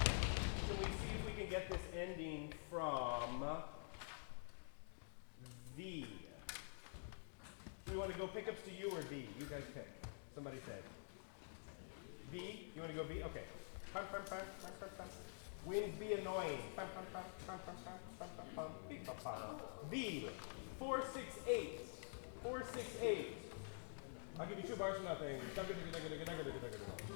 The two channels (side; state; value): right; silent; digital silence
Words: Can we see if we can get this ending from V? Do we want to go pickups to U or V? You guys pick. Somebody say. V? You want to go V? Okay. Pum, pum, pum, pum, pum, pum. Winds be annoying. Pum, pum, pum, pum, pum, pum, pum, pum, pum, beep, pum, pum. V. 4, 6, 8. 4, 6, 8. I'll give you 2 bars for nothing.